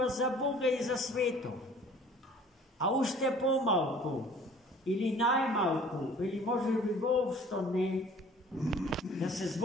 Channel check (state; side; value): normal; both; correlation 0.50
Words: за Бога и за светот. А уште помалку, или најмалку, или може би воопшто не, да се